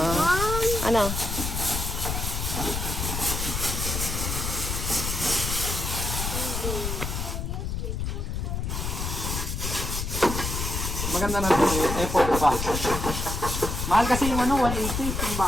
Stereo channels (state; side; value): noise; left; rumble, 3 dB below the sound